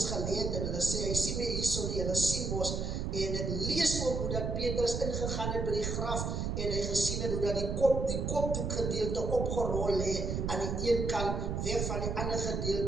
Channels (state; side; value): noise; right; rumble, 1 dB below the sound